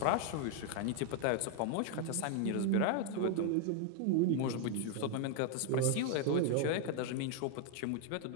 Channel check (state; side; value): different; both; correlation 0.00